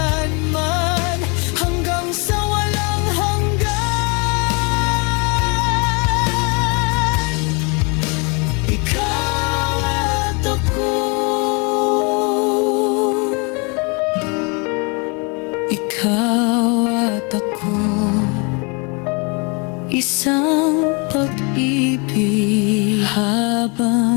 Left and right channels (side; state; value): right; quieter; 32.0 dB